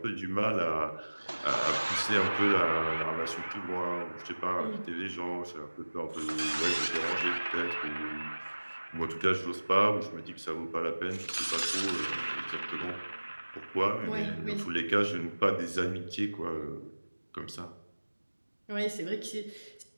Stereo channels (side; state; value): both; inverted; correlation -1.00